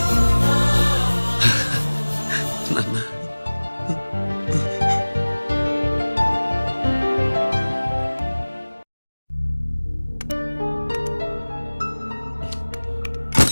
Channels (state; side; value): inverted; both; correlation -1.00